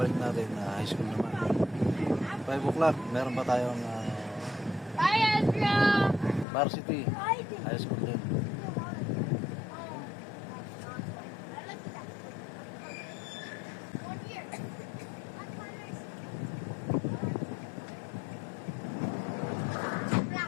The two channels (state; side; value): drops out; right; at 6.5 s